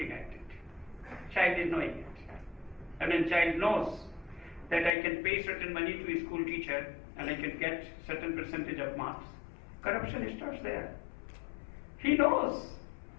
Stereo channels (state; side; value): drops out; right; at 4.9 s